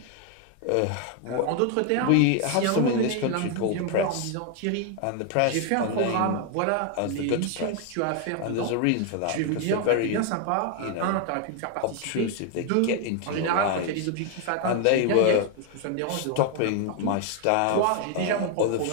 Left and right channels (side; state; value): both; different; correlation 0.01